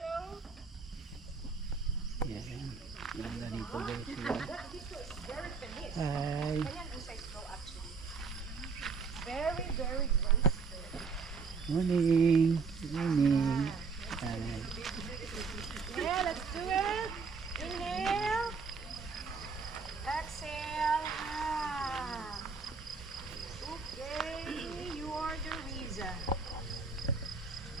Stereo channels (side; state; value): left; quieter; 4.9 dB